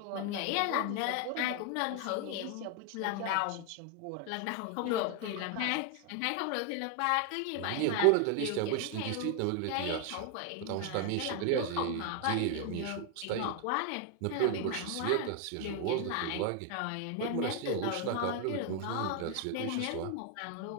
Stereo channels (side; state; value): both; different; correlation 0.00